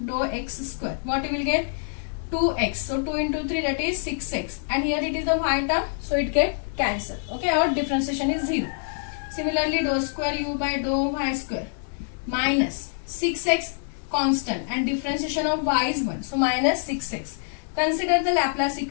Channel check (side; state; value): right; silent; digital silence